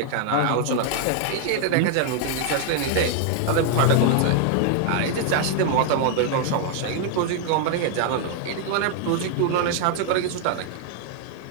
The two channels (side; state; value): both; different; correlation 0.00